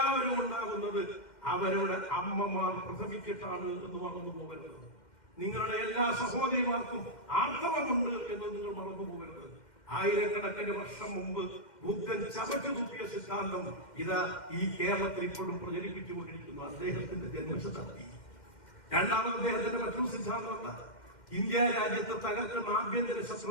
ഉണ്ടാകുന്നത് അവരുടെ അമ്മമാർ പ്രസവിച്ചിട്ടാണ് എന്ന് മറന്നു പോകരുത്. നിങ്ങളുടെ എല്ലാ സഹോദരിമാർക്കും ആർത്തവമുണ്ട് എന്ന് നിങ്ങൾ മറന്നു പോകരുത്. ആയിരക്കണക്കിന് വർഷം മുമ്പ് ബുദ്ധൻ ചവച്ചു തുപ്പിയ സിദ്ധാന്തം ഇതാ ഈ കേരളത്തിൽ ഇപ്പോഴും പ്രചരിപ്പിച്ചുകൊണ്ടിരിക്കുന്നു. അദ്ദേഹത്തിന്റെ ജന്മശതാബ്ദി. രണ്ടാമത് അദ്ദേഹത്തിന്റെ മറ്റൊരു സിദ്ധാന്തമല്ല. ഇന്ത്യ രാജ്യത്തെ തകർക്കുന്ന ആഭ്യന്തര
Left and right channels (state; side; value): late; right; 2.1 ms